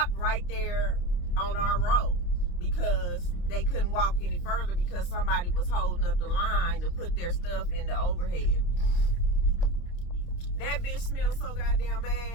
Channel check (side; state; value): right; late; 28 ms